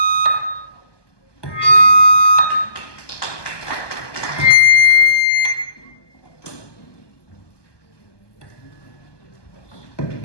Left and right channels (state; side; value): late; right; 1.2 ms